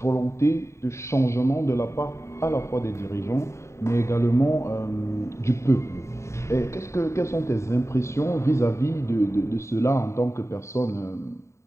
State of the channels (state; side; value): late; right; 0.14 ms